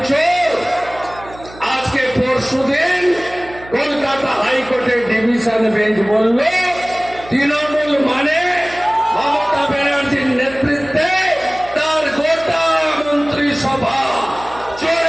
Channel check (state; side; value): noise; right; hum, 19 dB below the sound